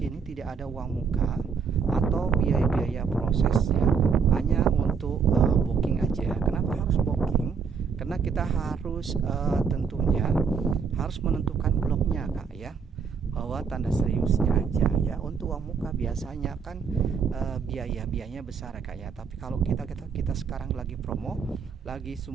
tidak ada uang muka atau biaya-biaya proses ya, hanya untuk booking aja. Kenapa harus booking? Karena kita harus tentunya harus menentukan bloknya Kak ya, bahwa tanda seriusnya aja ya. Untuk uang muka biasanya kan biayanya besar Kak ya, tapi kalau kita sekarang lagi promo, lagi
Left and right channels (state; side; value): quieter; left; 6.0 dB